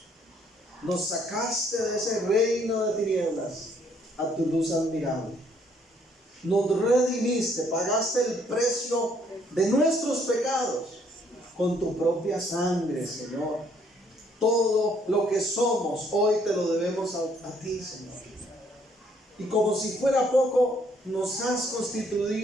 Nos sacaste de ese reino de tinieblas a tu luz admirable. Nos redimiste, pagaste el precio de nuestros pecados con tu propia sangre, Señor. Todo lo que somos hoy te lo debemos a ti, Señor. Y como si fuera poco, nos has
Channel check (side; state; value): both; normal; correlation 0.66